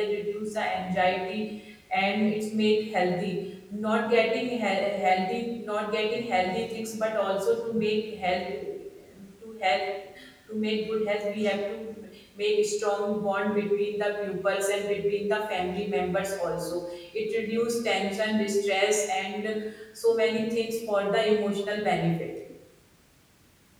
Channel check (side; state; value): both; identical; correlation 1.00